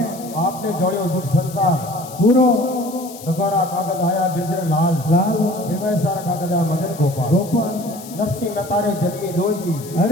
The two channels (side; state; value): left; noise; hiss, 16 dB below the sound